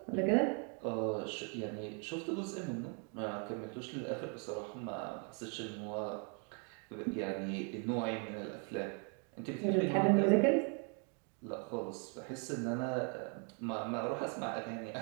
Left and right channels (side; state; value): left; quieter; 39.0 dB